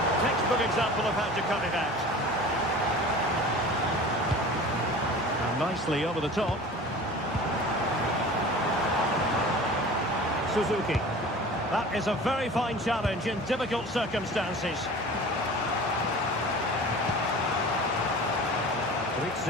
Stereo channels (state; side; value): normal; both; correlation 0.39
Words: Textbook example of how to cut it out. And nicely over the top. Suzuki. That is a very fine challenge in difficult circumstances.